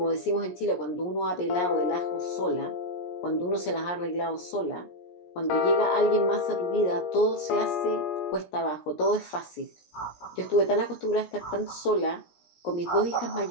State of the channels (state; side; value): late; right; 17 ms